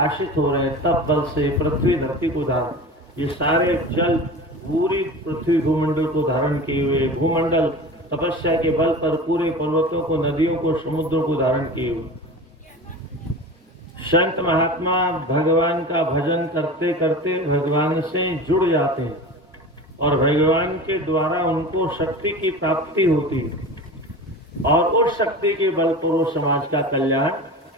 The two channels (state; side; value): normal; both; correlation 0.33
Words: हो रहे हैं, तप बल से पृथ्वी धरती को धारण, ये सारे जल पूरी पृथ्वी भूमंडल को धारण किए हुए, भूमंडल तपस्या के बल पर पूरे पर्वतों को, नदियों को, समुद्रों को धारण किए हुए। संत महात्मा भगवान का भजन करते करते भगवान से जुड़ जाते हैं और भगवान के द्वारा उनको शक्ति की प्राप्ति होती है और उस शक्ति के बल पर वो समाज का कल्याण